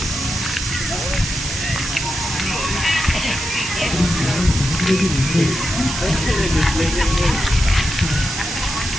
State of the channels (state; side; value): noise; right; hiss, 5 dB below the sound